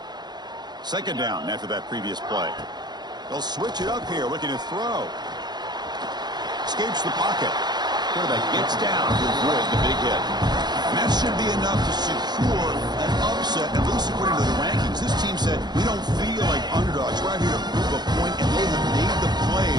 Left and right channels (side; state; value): left; late; 0.20 ms